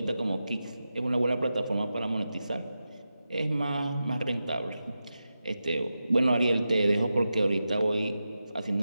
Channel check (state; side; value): inverted; both; correlation -0.91